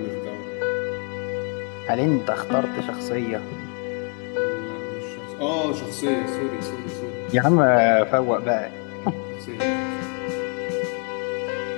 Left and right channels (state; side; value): quieter; right; 39.2 dB